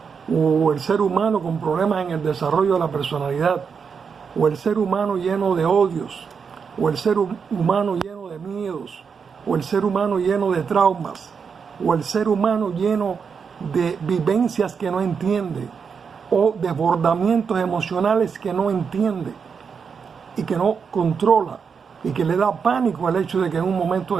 o el ser humano con problemas en el desarrollo de la personalidad, o el ser humano lleno de odios, o el ser humano lleno de miedos, o el ser humano lleno de traumas, o el ser humano lleno de vivencias que no entiende, o desbordamientos emocionales que no entiende y que no controla, y que le da pánico al hecho de que en un momento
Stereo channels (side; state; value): left; quieter; 6.1 dB